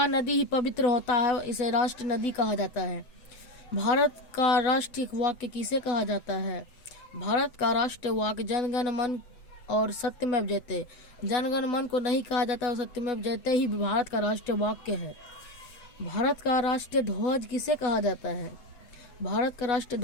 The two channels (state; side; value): late; right; 7.9 ms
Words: नदी ही पवित्र होता है, इसे राष्ट्रीय नदी कहा जाता है। भारत का राष्ट्रीय वाक्य किसे कहा जाता है? भारत का राष्ट्रीय वाक्य जनगण मन और सत्यमेव जयते। जनगण मन को नहीं कहा जाता और सत्यमेव जयते ही भारत का राष्ट्रीय वाक्य है। भारत का राष्ट्रीय ध्वज किसे कहा जाता है? भारत का राष्ट्रीय